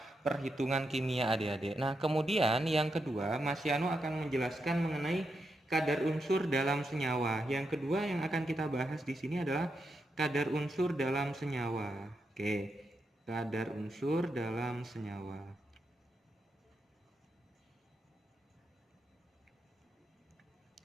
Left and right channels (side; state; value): both; normal; correlation 0.84